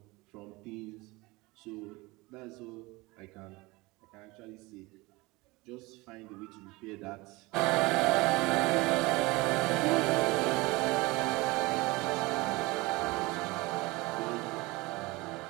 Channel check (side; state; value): left; quieter; 22.7 dB